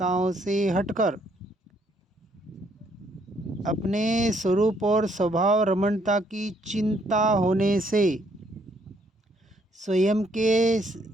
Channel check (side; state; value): both; normal; correlation 0.68